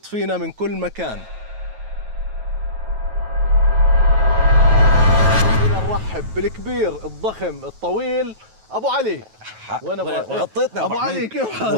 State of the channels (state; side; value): late; left; 9.2 ms